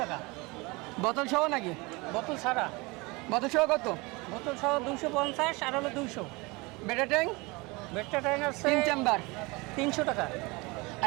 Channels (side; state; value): left; quieter; 25.2 dB